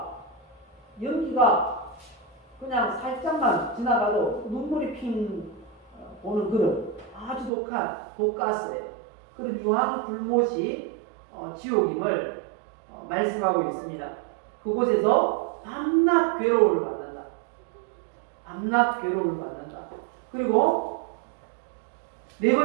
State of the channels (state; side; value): drops out; left; at 7.5 s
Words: 연기가 그냥 살짝만 지나가도 눈물이 핑 보는 그런 아주 독한 독가스예요. 그런 유황불못이 지옥임을 말씀하고 있습니다. 그곳에서 밤낮 괴로움을 받는다. 밤낮 괴로움을 받는다. 그리고 네